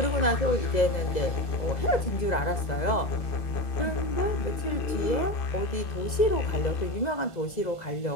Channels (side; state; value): right; late; 2.0 ms